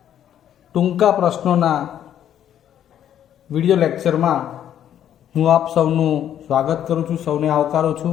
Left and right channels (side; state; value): right; quieter; 10.4 dB